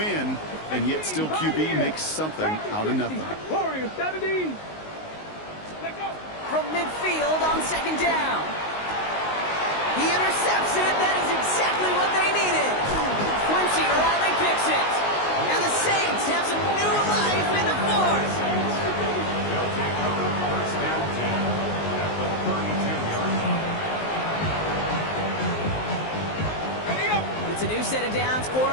and yet still QB makes something out of nothing. Warriors 70. From midfield on 2nd down. He intercepts it. That is exactly what they needed. Quincy Riley picks it. And the Saints have some new life in the 4th. They'll take over 1st and 10 at the 32-yard line. It's a new set of downs for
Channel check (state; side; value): late; right; 19 ms